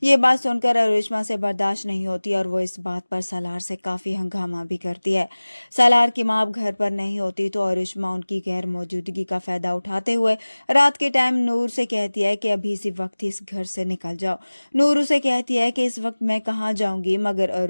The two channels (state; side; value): inverted; both; correlation -1.00